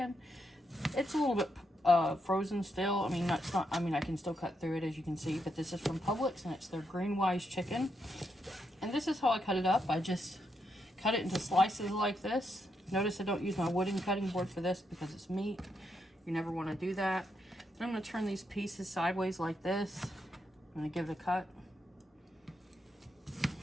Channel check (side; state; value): both; normal; correlation 0.81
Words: It's a little bit frozen still. I mean, I can still cut through it as you can see, but this is from Publix and it's their Green Wise chicken. And this is how I cut it up. I just cut it into slices like this. Notice I don't use my wooden cutting board for this because it's meat. You never want to do that. Then I'm going to turn these pieces sideways like this. I'm going to give it a cut